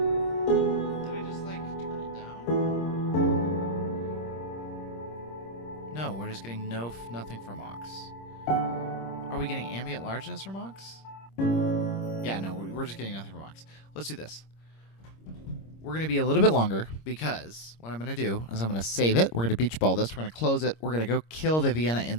Getting nothing from aux. Are we getting ambient largeness from aux? Yeah, no, we're just getting nothing from aux. Let's do this. We're going to be a little bit longer because what I'm going to do is I'm going to save it. We're going to beach ball this. We're going to close it. We're going to go kill the Vienna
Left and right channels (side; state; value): right; late; 26 ms